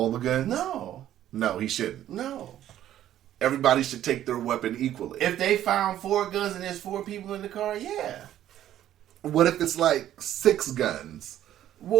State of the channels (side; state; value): left; quieter; 12.0 dB